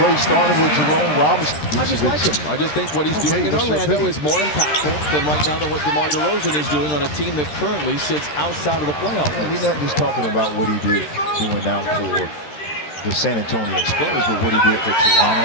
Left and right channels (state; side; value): late; right; 13 ms